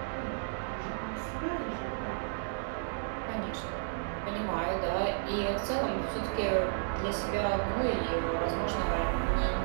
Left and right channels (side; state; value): left; silent; 56 dB below the other